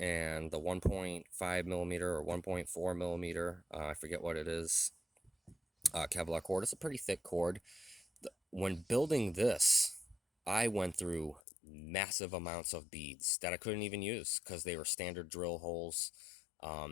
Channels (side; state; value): right; drops out; at 11.4 s